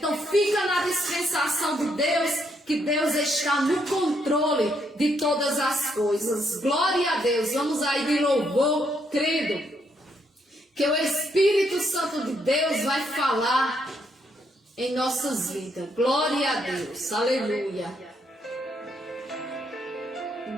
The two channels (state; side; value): normal; both; correlation 0.75